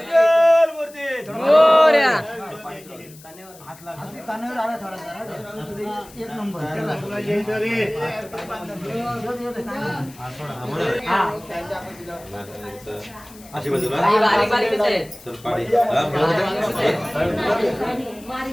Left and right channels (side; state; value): left; noise; hiss, 22 dB below the sound